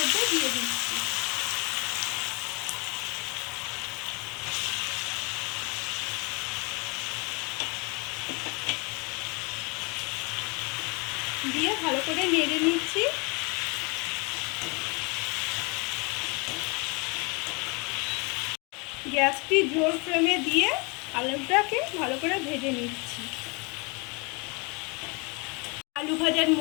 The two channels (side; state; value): right; quieter; 30.3 dB